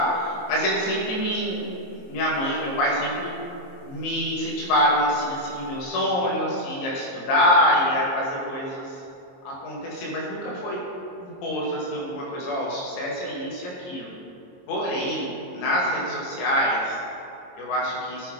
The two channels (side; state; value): right; late; 22 ms